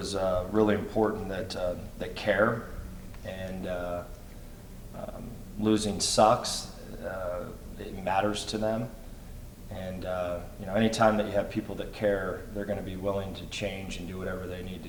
really important, that care, and losing sucks. It matters to them, and anytime that you have people that care, they're going to be willing to change and do whatever they need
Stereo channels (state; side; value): identical; both; correlation 1.00